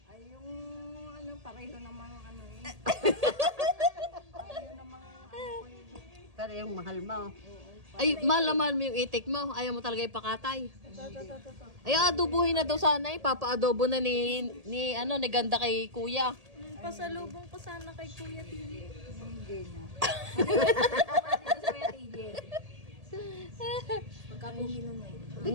Ay, yung, ano, pareho namang, ano eh. Pareho namang, ano ko yun. Pero yung mahal mo. Ay, mahal na mahal mo yung itik mo. Ayaw mo talaga ipakatay. Ay, adobuhin na daw sana eh. Papa-adobo na ni ganda kay kuya. Pasalubong ko sana kay Kuya TJ. Hindi na. Dito sa Kuya TJ. Pagkapugi nung ngayon. Di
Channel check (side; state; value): left; late; 1.8 ms